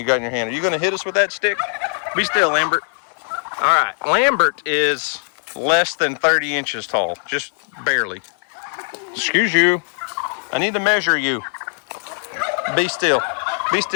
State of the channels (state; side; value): silent; right; 56 dB below the other